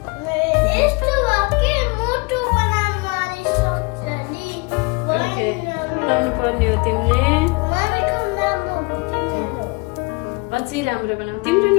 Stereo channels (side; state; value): right; quieter; 27.7 dB